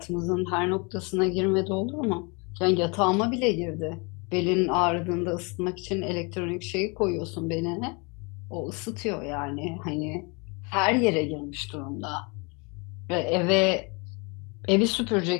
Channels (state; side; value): quieter; right; 31.0 dB